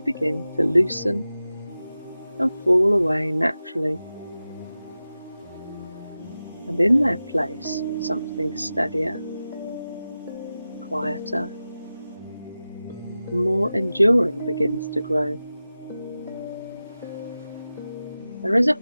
to loosen and fall away naturally. And in their place, something steadier, quieter, and more enduring begins to grow. There is a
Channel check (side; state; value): both; inverted; correlation -0.94